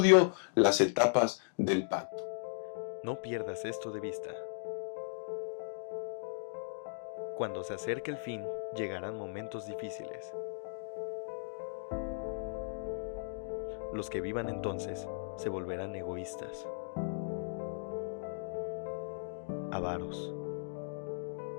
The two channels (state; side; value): silent; right; digital silence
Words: las etapas del pacto. No pierdas esto de vista. Cuando se acerque el fin, llegarán momentos difíciles. Los que vivan entonces se volverán egoístas, avaros,